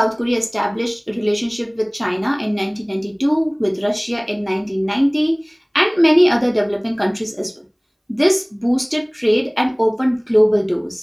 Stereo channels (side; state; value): both; identical; correlation 1.00